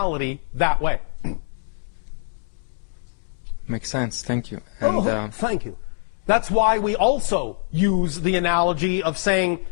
that way. Makes sense. Thank you. And, thank you. That's why we also use the analogy of saying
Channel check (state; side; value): silent; right; 63 dB below the other